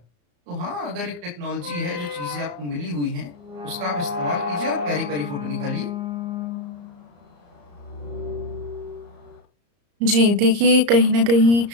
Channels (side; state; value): left; late; 34 ms